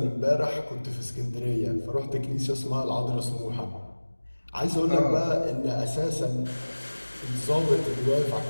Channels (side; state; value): both; inverted; correlation -1.00